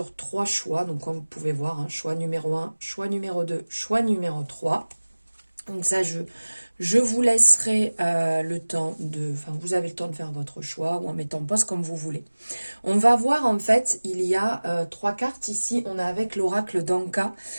3 choix, donc comme vous pouvez voir, choix numéro 1, choix numéro 2, choix numéro 3. Donc ça, je vous laisserai le temps de... Enfin, vous avez le temps de faire votre choix ou en mettant pause comme vous voulez. On va voir, en fait, il y a 3 cartes ici. On a avec l'oracle d'Anka.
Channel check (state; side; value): inverted; both; correlation -1.00